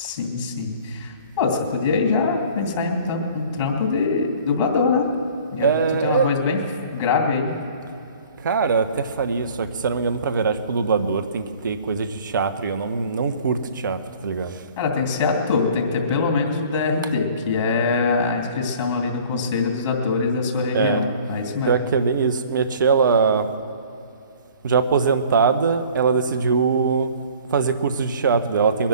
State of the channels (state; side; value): inverted; both; correlation -0.50